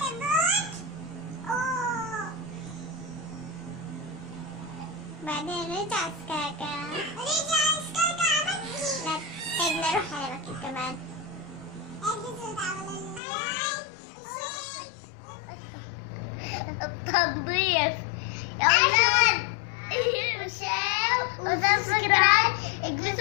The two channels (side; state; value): right; drops out; at 13.2 s